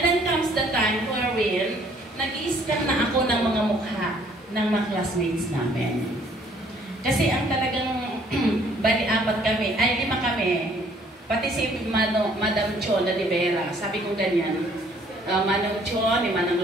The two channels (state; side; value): normal; both; correlation 0.61